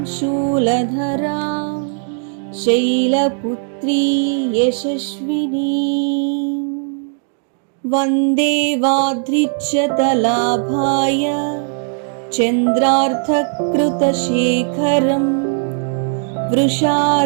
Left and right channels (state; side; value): silent; left; 58 dB below the other